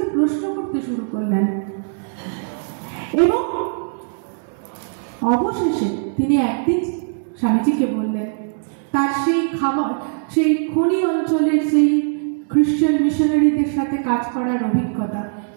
প্রশ্ন করতে শুরু করলেন এবং অবশেষে তিনি একদিন স্বামীজিকে বললেন তার সেই খনি অঞ্চলের সেই খ্রিস্টান মিশনারিদের সাথে কাজ করার অভিজ্ঞতা,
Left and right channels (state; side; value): silent; left; 65 dB below the other